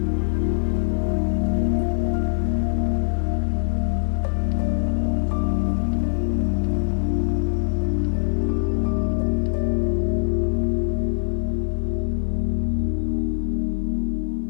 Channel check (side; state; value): right; silent; 64 dB below the other